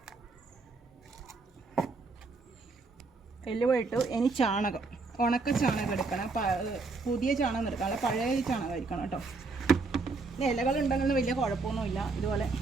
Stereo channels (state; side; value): quieter; left; 3.9 dB